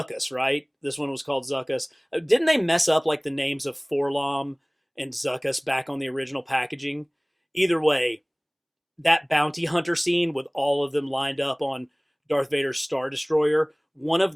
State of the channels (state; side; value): identical; both; correlation 1.00